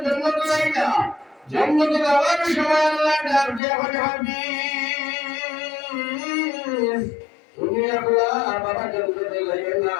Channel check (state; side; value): drops out; right; at 3.6 s